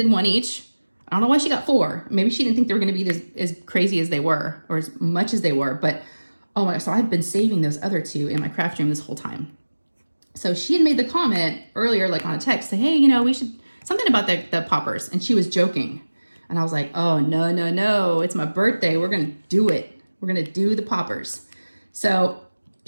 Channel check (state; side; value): inverted; both; correlation -1.00